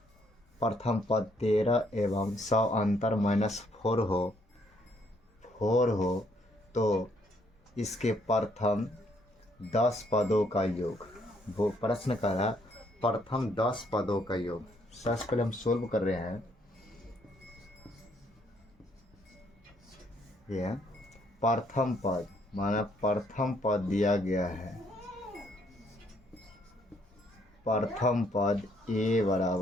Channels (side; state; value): both; normal; correlation 0.69